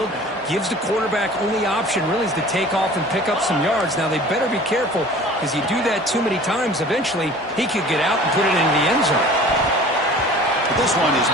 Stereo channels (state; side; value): normal; both; correlation 0.45